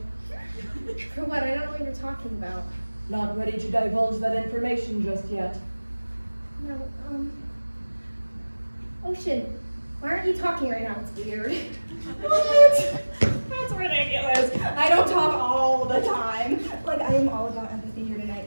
For what? I don't know what you're talking about. Not ready to divulge that information just yet. No, Ocean, why aren't you talking right now? It's weird. What? That's ridiculous. I don't talk all the time. Like, I am all about empathy here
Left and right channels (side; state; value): both; inverted; correlation -1.00